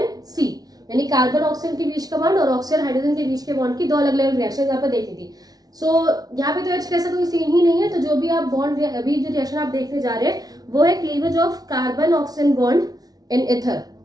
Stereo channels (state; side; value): late; left; 0.19 ms